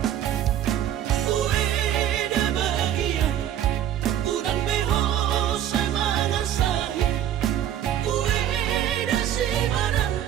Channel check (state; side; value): quieter; left; 10.9 dB